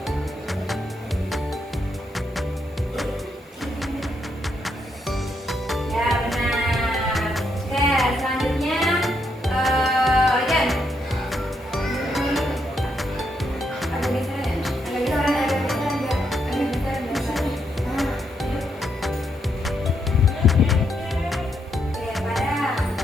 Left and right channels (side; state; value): both; normal; correlation 0.78